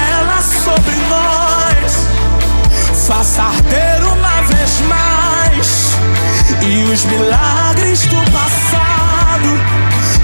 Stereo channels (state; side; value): inverted; both; correlation -1.00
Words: sobre nós. Faça arder uma vez mais. E os milagres do passado